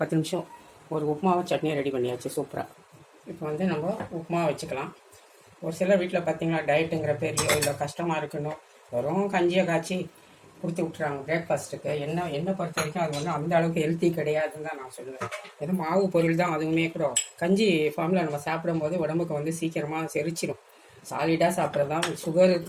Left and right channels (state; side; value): identical; both; correlation 1.00